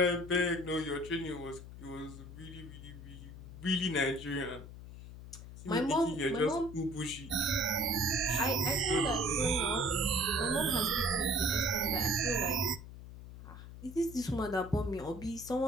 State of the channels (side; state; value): left; noise; hum, 13 dB below the sound